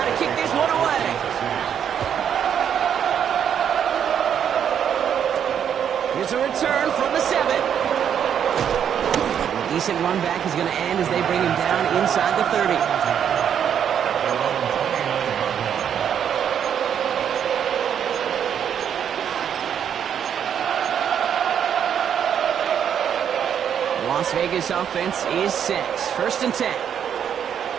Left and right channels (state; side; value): quieter; left; 8.6 dB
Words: to kick this one away. Here's a return from the 7. A decent run back is going to end as they bring him down inside the 30. Las Vegas offense is set. First and 10.